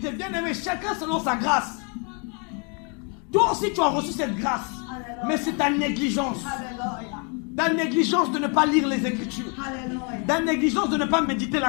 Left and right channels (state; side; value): quieter; right; 36.2 dB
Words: Bien aimé, chacun selon sa grâce. Toi aussi, tu as reçu cette grâce. Alléluia. Mais c'est ta négligence. Alléluia. Ta négligence de ne pas lire les Écritures. Alléluia. Ta négligence de ne pas méditer